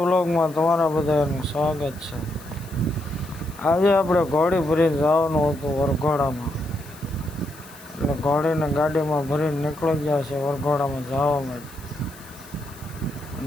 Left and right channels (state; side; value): noise; left; hiss, 21 dB below the sound